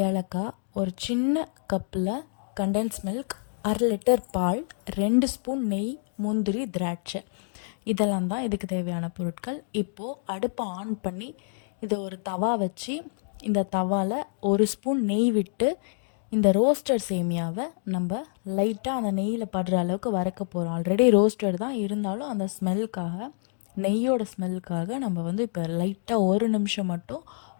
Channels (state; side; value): silent; right; digital silence